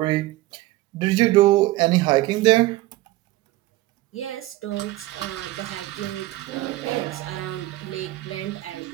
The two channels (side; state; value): left; quieter; 17.3 dB